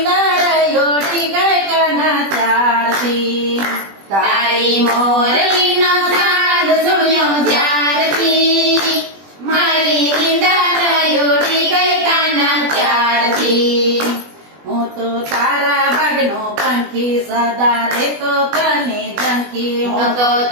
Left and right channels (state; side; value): late; left; 20 ms